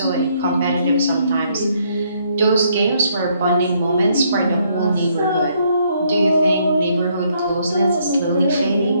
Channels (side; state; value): both; inverted; correlation -0.70